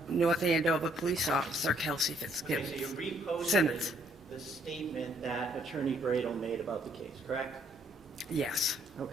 Andover Police Officer Kelsey Okay, Fitzsimmons. so you reposted Simmons. the statement that Attorney Bradle made about the case, correct? Yes. Okay.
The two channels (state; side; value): normal; both; correlation 0.67